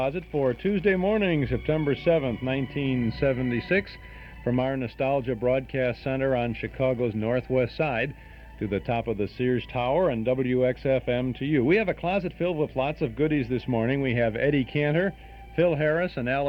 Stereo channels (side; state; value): both; identical; correlation 1.00